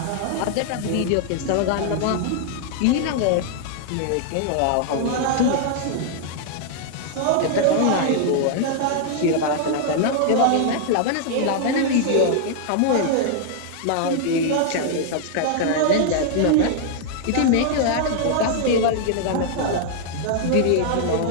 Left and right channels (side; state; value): both; different; correlation -0.01